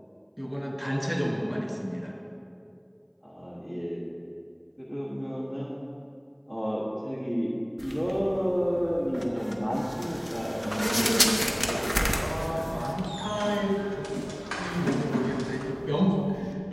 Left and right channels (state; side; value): identical; both; correlation 1.00